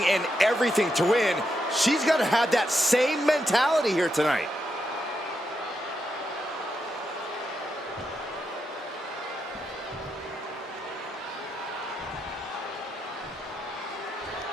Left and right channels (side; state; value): both; normal; correlation 0.83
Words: and everything to win. She's got to have that same mentality here tonight.